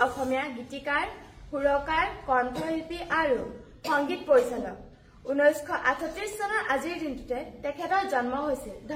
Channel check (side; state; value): both; identical; correlation 1.00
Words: অসমীয়া গীতিকাৰ, সুৰকাৰ, কণ্ঠশিল্পী আৰু সংগীত পৰিচালক। 1938 চনৰ আজিৰ দিনটোতে তেখেতৰ জন্ম হৈছিল।